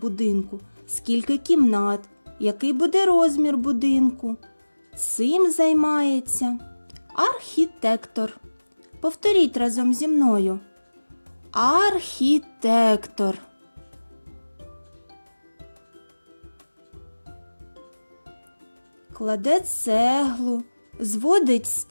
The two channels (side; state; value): both; inverted; correlation -1.00